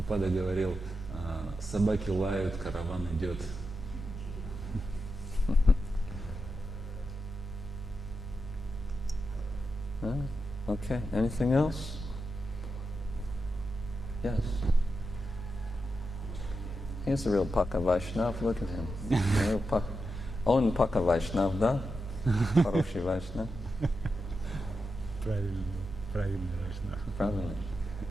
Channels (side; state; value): both; normal; correlation 0.88